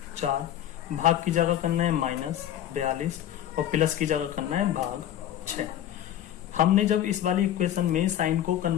4, भाग की जगह करना है -42, और प्लस की जगह करना है भाग 6। हमने जब इस वाली इक्वेशन में साइन को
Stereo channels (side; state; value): right; quieter; 11.5 dB